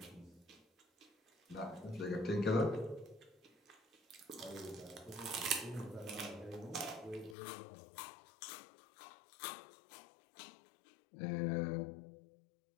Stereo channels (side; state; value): right; drops out; at 7.4 s